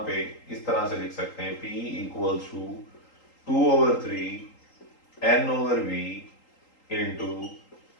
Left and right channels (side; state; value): right; late; 3.8 ms